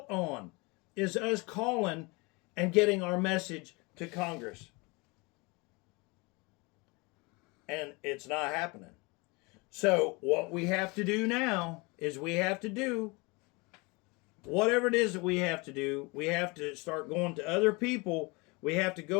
on, is us calling and getting our message to Congress. And it's not happening. So what we have to do now is we have to do whatever it is that we have to do. We have to start going to other people. We have to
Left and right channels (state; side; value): quieter; right; 27.0 dB